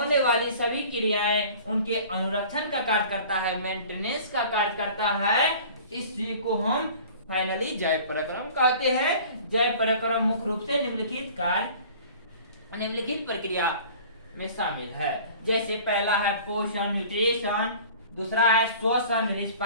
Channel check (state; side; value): inverted; both; correlation -0.45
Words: वाली सभी क्रियाएं उनके अनुरक्षण का कार्य करता है, मेंटेनेंस का कार्य करता है। इसी को हम फाइनली जैव पराक्रम कहते हैं। जैव पराक्रम मुख्य रूप से निम्नलिखित कार्य, निम्नलिखित प्रक्रिया में शामिल है। जैसे पहला है पोषण न्यूट्रिशन, दूसरा है श्वसन